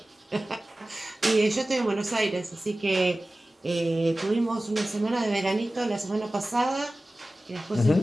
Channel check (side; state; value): both; normal; correlation 0.96